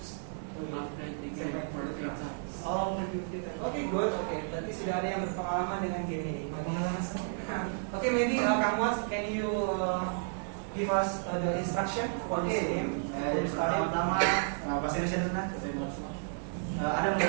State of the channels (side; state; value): left; silent; digital silence